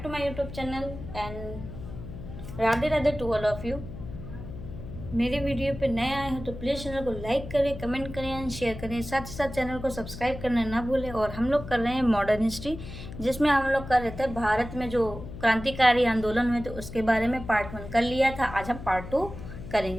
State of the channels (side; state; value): left; noise; hum, 11 dB below the sound